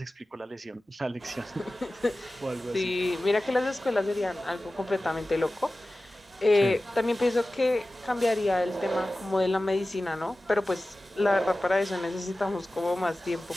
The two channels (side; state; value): both; normal; correlation 0.96